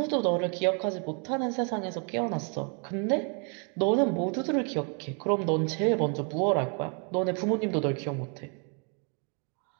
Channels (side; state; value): left; quieter; 38.0 dB